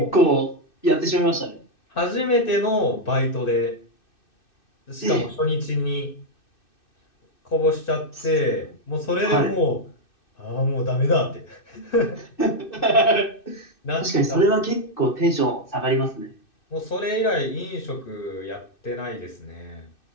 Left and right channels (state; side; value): late; right; 2.6 ms